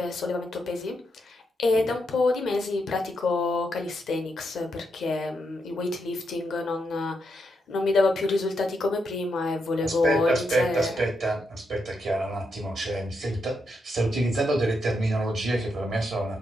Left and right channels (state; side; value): normal; both; correlation 0.82